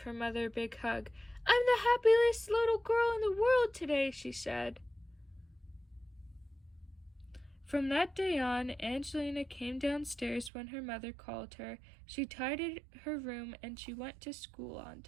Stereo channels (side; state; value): left; drops out; at 10.5 s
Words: her mother a big hug. "I'm the happiest little girl in the world today," she said. From that day on, Angelina came downstairs when her mother called her. She tidied her room and she went to school on